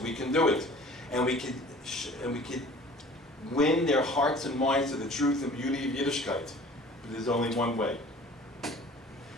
can do it. And we can win their hearts and minds to the truth and beauty of Yiddishkeit. But there's only one way.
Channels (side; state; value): both; normal; correlation 0.47